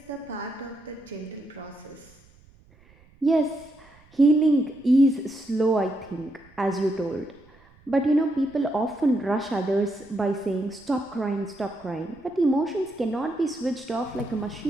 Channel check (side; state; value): right; noise; rumble, 28 dB below the sound